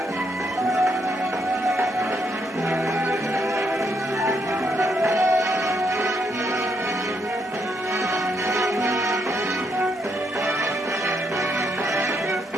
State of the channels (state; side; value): normal; both; correlation 0.76